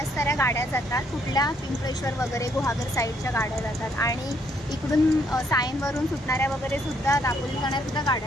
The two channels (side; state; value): both; normal; correlation 0.69